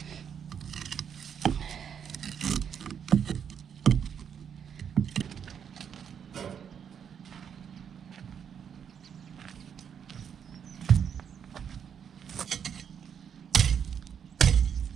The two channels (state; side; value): quieter; left; 7.8 dB